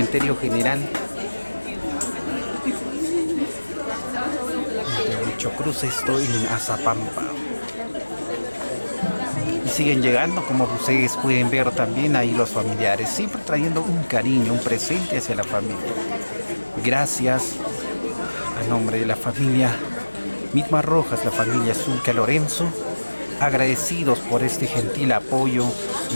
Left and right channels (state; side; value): inverted; both; correlation -1.00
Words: general de Huichocruz, esto en Azapampa. Y siguen llegando, como ustedes pueden ver también ahí los familiares, siempre trayendo un cariño, un presente hacia la familia. Gracias a nombre de la familia Mitma Rojas, la familia Zulca Lorenzo, agradecidos por este gentil apoyo